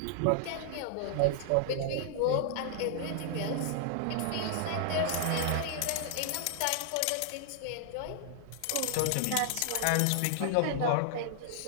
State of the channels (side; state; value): both; different; correlation 0.00